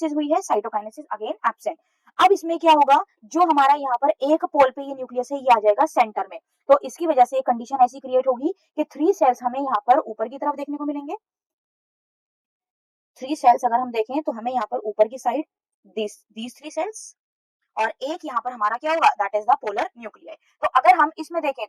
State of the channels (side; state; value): both; identical; correlation 1.00